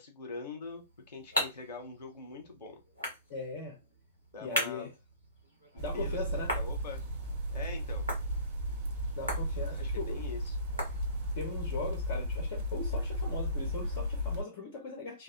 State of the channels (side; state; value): both; inverted; correlation -0.47